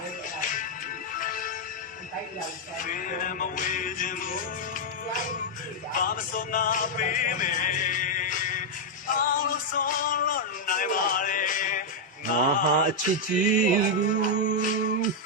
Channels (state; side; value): normal; both; correlation -0.02